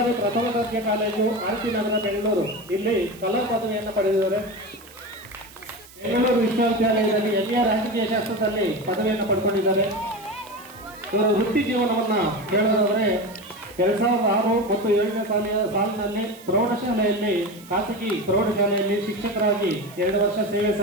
ಪ್ರಥಮ ದರ್ಜೆ ಕಾಲೇಜು RP ನಗರ ಬೆಂಗಳೂರು ಇಲ್ಲಿ ಕಲಾ ಪದವಿಯನ್ನು ಪಡೆದಿದ್ದಾರೆ. ಬೆಂಗಳೂರು ವಿಶ್ವವಿದ್ಯಾಲಯದಲ್ಲಿ MA ರಾಜಕೀಯ ಶಾಸ್ತ್ರದಲ್ಲಿ ಪದವಿಯನ್ನು ಪಡ್ಕೊಂಡಿದ್ದಾರೆ. ಇವರು ವೃತ್ತಿ ಜೀವನವನ್ನು ಹೇಳೋದಾದರೆ 2006 ಮತ್ತು 7ನೇ ಸಾಲಿನಲ್ಲಿ ಪ್ರೌಢಶಾಲೆಯಲ್ಲಿ ಖಾಸಗಿ ಪ್ರೌಢಶಾಲೆಯಲ್ಲಿ ಶಿಕ್ಷಕರಾಗಿ 2 ವರ್ಷ ಸೇವೆ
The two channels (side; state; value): right; noise; hiss, 22 dB below the sound